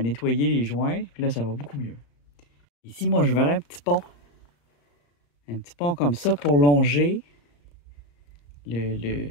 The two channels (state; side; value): late; right; 35 ms